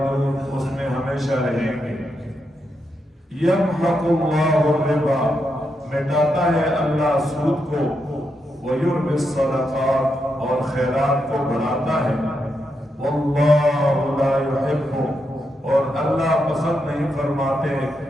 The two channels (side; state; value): both; normal; correlation 0.83